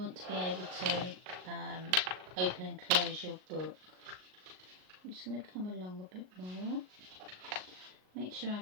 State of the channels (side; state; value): left; late; 38 ms